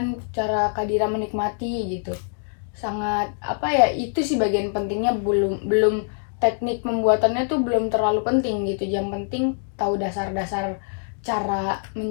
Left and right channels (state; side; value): silent; right; 63 dB below the other